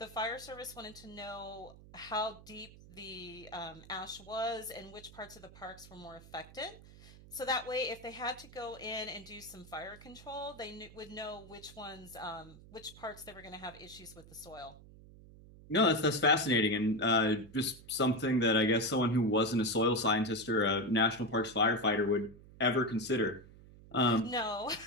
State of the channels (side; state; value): right; noise; hum, 20 dB below the sound